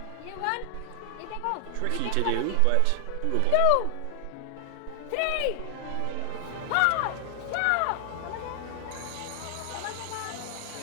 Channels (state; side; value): different; both; correlation 0.00